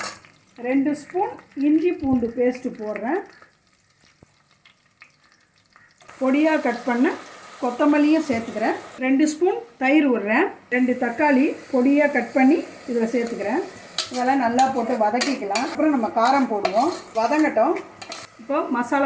2 ஸ்பூன் இஞ்சி பூண்டு பேஸ்ட்டு போடுறேன். பொடியாக கட் பண்ண கொத்தமல்லியும் சேர்த்துக்கிறேன். 2 ஸ்பூன் தயிர் விடுறேன். 2 தக்காளி பொடியாக கட் பண்ணி இதில் சேர்த்துக்கிறேன். இதெல்லாம் நல்லா போட்டு வதக்கிக்கலாம். அப்புறம் நம்ம காரம் போடுவோம். வதங்கட்டும். இப்போ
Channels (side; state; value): both; identical; correlation 1.00